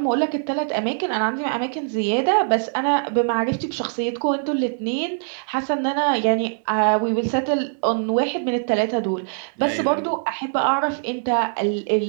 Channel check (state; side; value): silent; left; digital silence